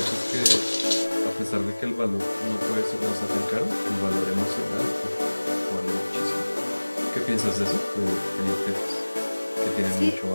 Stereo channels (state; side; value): inverted; both; correlation -1.00